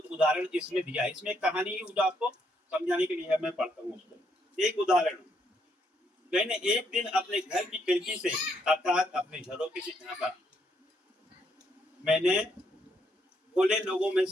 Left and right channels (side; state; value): both; normal; correlation 0.74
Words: उदाहरण इसमें दिया है। इसमें एक कहानी जो आपको समझाने के लिए है, मैं पढ़ता हूँ उसको। एक उदाहरण, मैंने एक दिन अपने घर की खिड़की से अर्थात अपने झरोखे से झांका मैंने भोले लोगों में